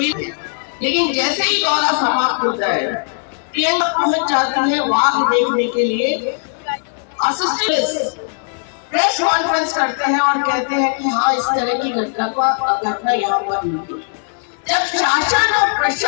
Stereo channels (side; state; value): right; silent; 67 dB below the other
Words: लेकिन जैसे ही दौरा समाप्त होता है, प्रियंका पहुंच जाती है वाघ देखने के लिए। असिस्टेंट प्रेस कॉन्फ्रेंस करते हैं और कहते हैं कि हाँ, इस तरह की घटना यहाँ पर हुई। जब शासन और